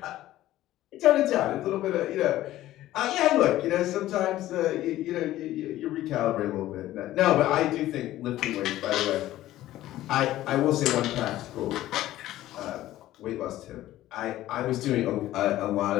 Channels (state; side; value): quieter; right; 14.7 dB